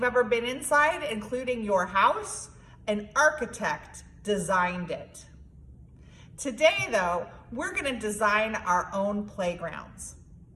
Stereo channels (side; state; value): both; identical; correlation 1.00